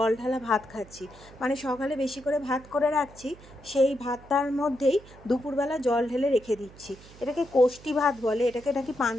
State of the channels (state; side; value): noise; right; hum, 21 dB below the sound